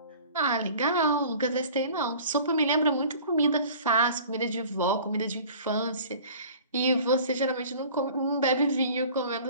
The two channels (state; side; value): inverted; both; correlation -0.45